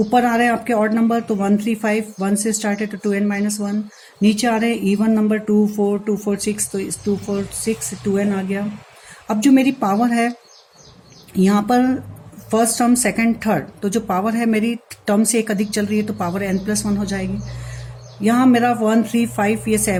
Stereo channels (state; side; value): identical; both; correlation 1.00